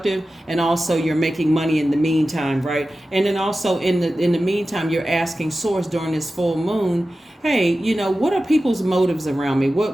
and also you're making money in the meantime, right? And then also in the meantime, you're asking source during this full moon, hey, what are people's motives around me?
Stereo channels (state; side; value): normal; both; correlation 0.94